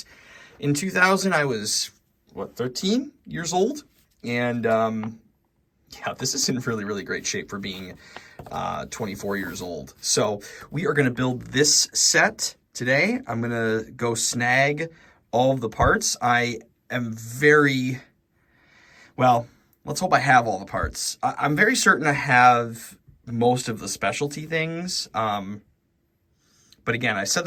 in 2000 I was 13 years old, and yeah, this is in really great shape for being 24 years old. So we are going to build this set today. I'm going to go snag all of the parts. I am let's hope I have all the parts. I'm very certain I have most of the specialty things. But again, I said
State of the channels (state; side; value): identical; both; correlation 1.00